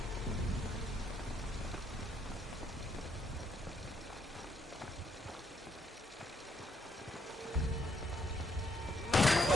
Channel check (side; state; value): both; normal; correlation 0.73